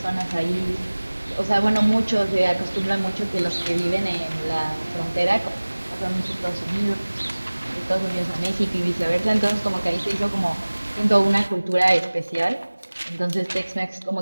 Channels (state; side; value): inverted; both; correlation -1.00